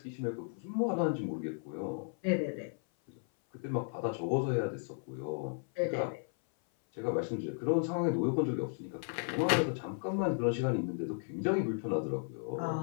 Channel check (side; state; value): right; silent; 55 dB below the other